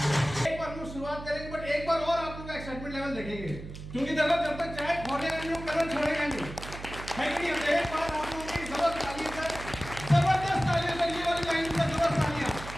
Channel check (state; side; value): noise; right; hum, 11 dB below the sound